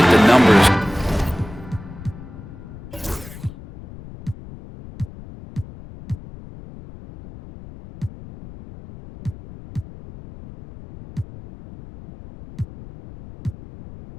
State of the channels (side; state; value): left; noise; rumble, 16 dB below the sound